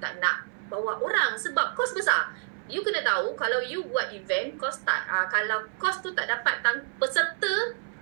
nak bawa orang. Sebab kos besar. You kena tahu kalau you buat event, kos tak, kalau kos tu tak dapat peserta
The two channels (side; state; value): left; silent; 58 dB below the other